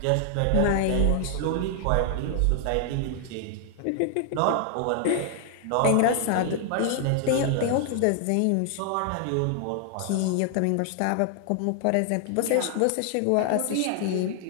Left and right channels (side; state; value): both; different; correlation 0.00